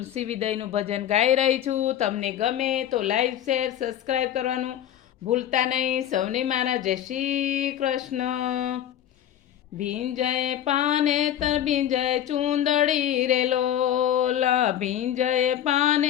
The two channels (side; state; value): right; quieter; 10.9 dB